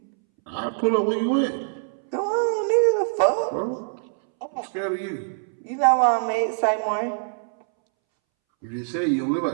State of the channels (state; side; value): silent; left; 63 dB below the other